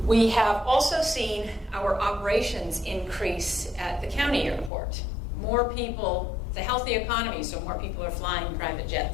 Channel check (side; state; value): right; drops out; at 4.7 s